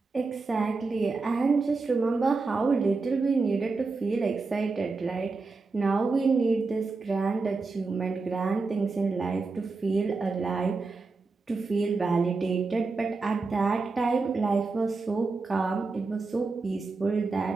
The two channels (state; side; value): quieter; left; 4.0 dB